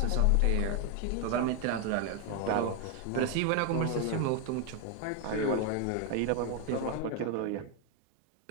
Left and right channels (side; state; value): both; different; correlation 0.01